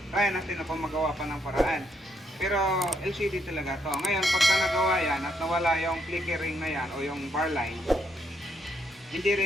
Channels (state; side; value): normal; both; correlation 0.75